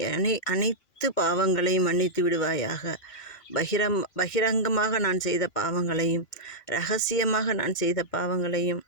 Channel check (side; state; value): right; late; 1.6 ms